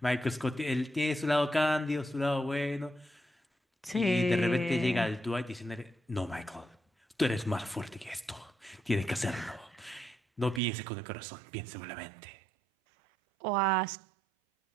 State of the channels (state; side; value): drops out; left; at 10.6 s